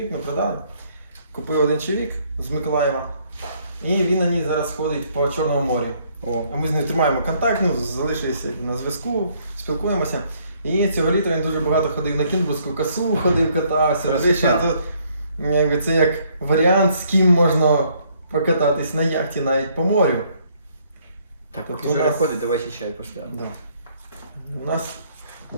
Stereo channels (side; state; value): both; inverted; correlation -0.67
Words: ми продали. Купив один чоловік з Миколаєва. І він на ній зараз ходить по Чорному морю. О, А ми з ним тримаємо контакт, ну, залишилися на зв'язку, спілкуємося. І цього літа він дуже багато ходив на Кінбурзьку косу, ходив, катався. Красота. Ще тут, якби, це як варіант, з ким можна покататись на яхті навіть по морю. так, Тобто поки у Жора нас- ходить, давайте чай поставимо. Да. У нас